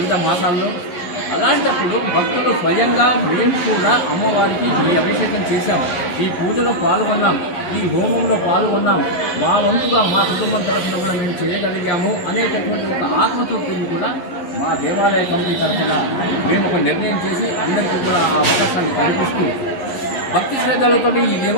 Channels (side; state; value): right; late; 11 ms